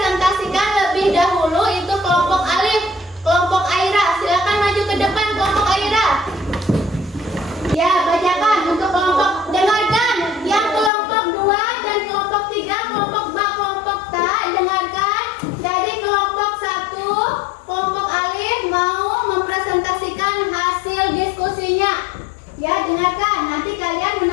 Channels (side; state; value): right; drops out; at 10.9 s